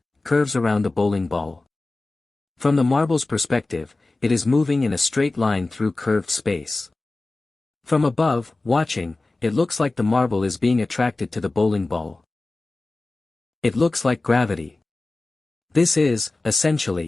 curves around the bowling ball. From the marble's perspective, it is moving in a straight line through curved space. From above, watching, it looks like the marble is being attracted to the bowling ball. It looks like gravity. This is,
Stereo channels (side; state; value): right; quieter; 3.1 dB